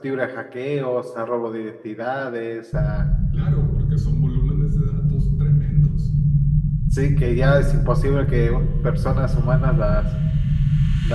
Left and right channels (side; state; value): both; identical; correlation 1.00